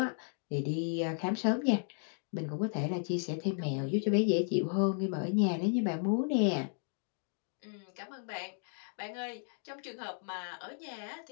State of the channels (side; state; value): right; silent; 55 dB below the other